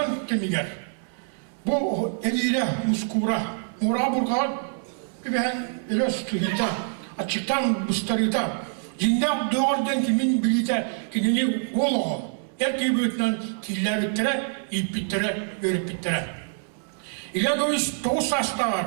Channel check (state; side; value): silent; left; digital silence